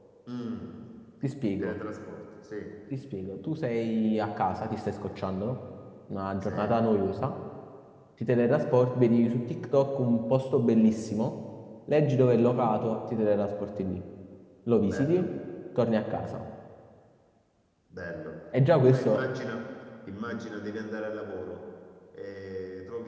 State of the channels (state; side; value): identical; both; correlation 1.00